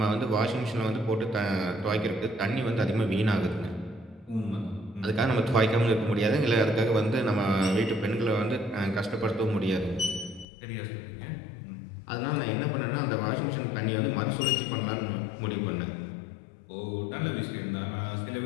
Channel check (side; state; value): right; drops out; at 10.5 s